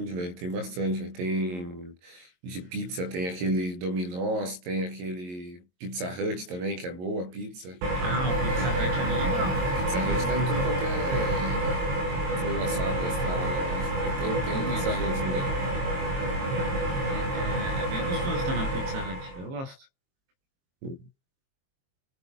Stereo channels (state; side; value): late; left; 22 ms